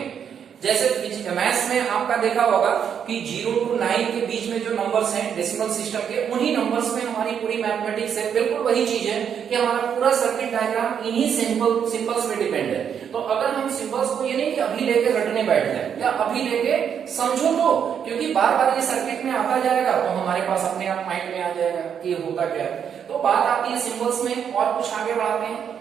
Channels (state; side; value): quieter; left; 8.0 dB